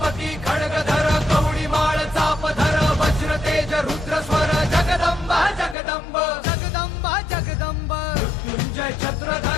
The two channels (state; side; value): drops out; right; at 5.8 s